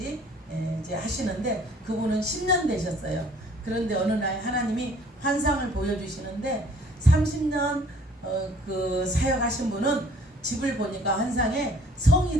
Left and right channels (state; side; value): normal; both; correlation 0.56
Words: 이제 하시는데 그분은 10년 되셨어요. 그런데 어느 날 하나님이 환상을 보여주시는데 30년 그 사역하신 분은 집을 보니까 환상에